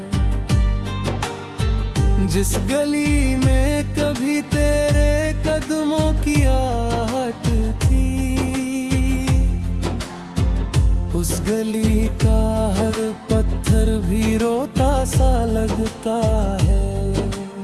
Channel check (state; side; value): identical; both; correlation 1.00